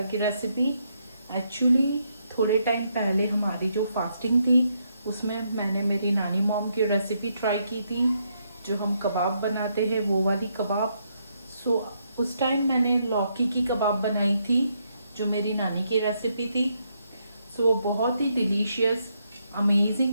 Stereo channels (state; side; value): inverted; both; correlation -0.77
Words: की रेसिपी। एक्चुअली थोड़े टाइम पहले हमारी जो फास्टिंग थी उसमें मैंने मेरी नानी मॉम की रेसिपी ट्राई की थी, जो हम कबाब बनाते हैं वो वाली कबाब। सो उस टाइम मैंने लौकी की कबाब बनाई थी, जो मेरी नानी की रेसिपी थी। सो बहुत ही डिलीशियस अमेजिंग